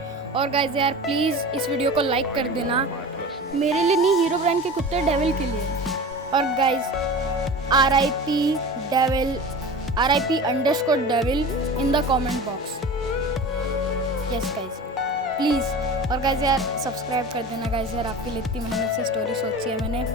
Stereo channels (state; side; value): normal; both; correlation 0.34